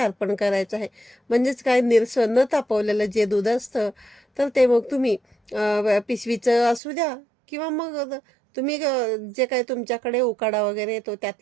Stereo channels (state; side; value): drops out; left; at 6.8 s